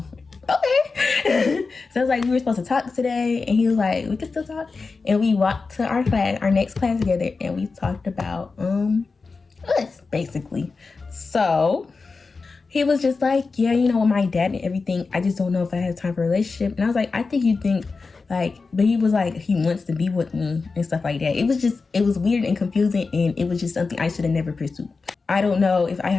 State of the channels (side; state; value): right; quieter; 4.3 dB